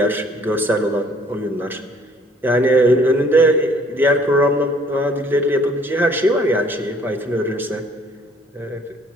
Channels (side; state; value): both; normal; correlation 0.59